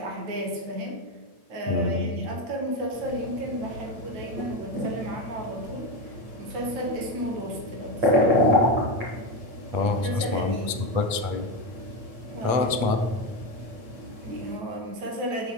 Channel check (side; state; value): left; late; 8.4 ms